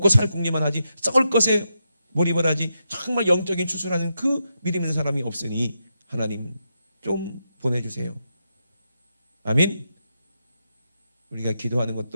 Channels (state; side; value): inverted; both; correlation -0.85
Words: 살 궁리만 하지, 썩을 것에 몰입을 하지, 정말 영적인 추수라는 그 믿음 있는 사람이 없으니 하나님 좀 보내주세요. 아멘. 우리가 기도하는